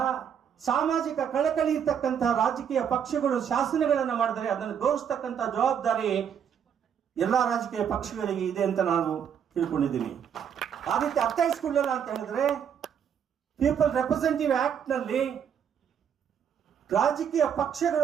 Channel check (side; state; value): left; quieter; 8.1 dB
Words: ಸಾಮಾಜಿಕ ಕಳಕಳಿ ಇರ್ತಕ್ಕಂತಹ ರಾಜಕೀಯ ಪಕ್ಷಗಳು ಶಾಸನಗಳನ್ನು ಮಾಡಿದರೆ ಅದನ್ನು ಗೌರವಿಸ್ತಕ್ಕಂಥ ಜವಾಬ್ದಾರಿ ಎಲ್ಲಾ ರಾಜಕೀಯ ಪಕ್ಷಗಳಿಗೆ ಇದೆ ಅಂತ ನಾನು ತಿಳ್ಕೊಂಡಿದ್ದೀನಿ. ಆ ರೀತಿ ಅರ್ಥೈಸ್ಕೊಳ್ಳಲ್ಲ ಅಂತ ಹೇಳಿದ್ರೆ, ಪೀಪಲ್ ರೆಪ್ರೆಸೆಂಟೇಟಿವ್ ಆಕ್ಟ್ ನಲ್ಲಿ ರಾಜಕೀಯ